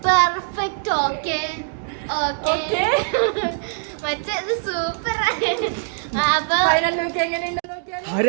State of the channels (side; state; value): left; silent; digital silence